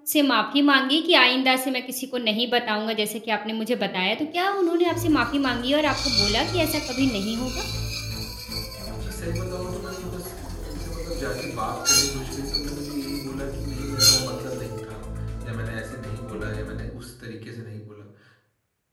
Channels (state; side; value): identical; both; correlation 1.00